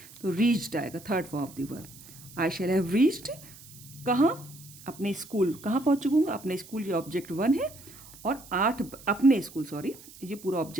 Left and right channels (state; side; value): noise; right; hiss, 19 dB below the sound